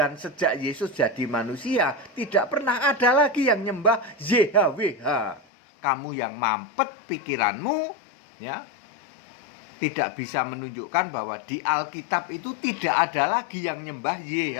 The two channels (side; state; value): right; drops out; at 5.4 s